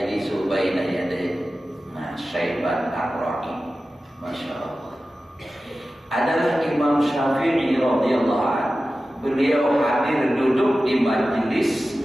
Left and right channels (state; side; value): normal; both; correlation 0.95